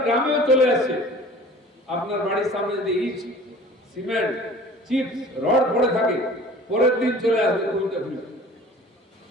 গ্রামেও চলে আসছে। আপনার বাড়ির সামনে যদি ইট, সিমেন্ট, চিপস, রড পড়ে থাকে, পরের দিন চলে আসবে খুলতে খুলতে।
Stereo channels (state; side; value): normal; both; correlation 0.46